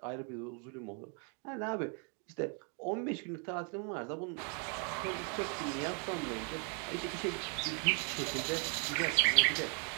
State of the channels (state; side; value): quieter; left; 39.0 dB